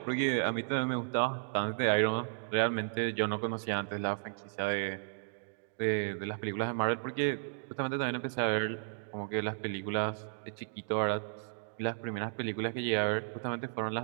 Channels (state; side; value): silent; left; digital silence